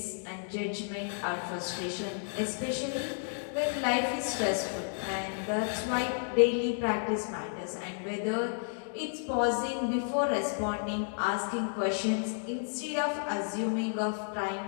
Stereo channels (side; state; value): right; silent; digital silence